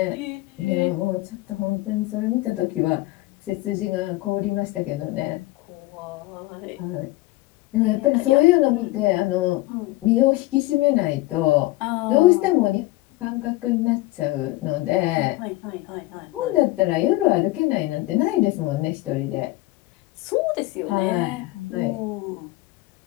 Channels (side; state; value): right; quieter; 19.2 dB